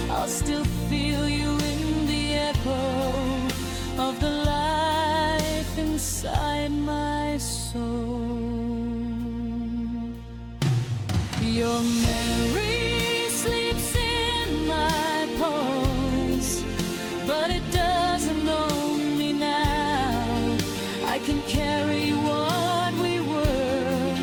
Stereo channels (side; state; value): both; identical; correlation 1.00